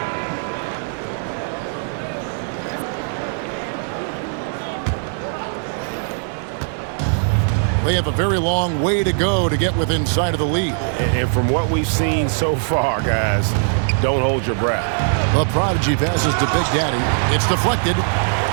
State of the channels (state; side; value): silent; left; 65 dB below the other